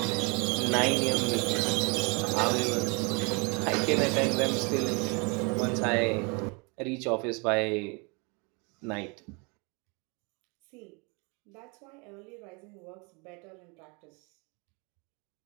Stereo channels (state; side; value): quieter; left; 31.9 dB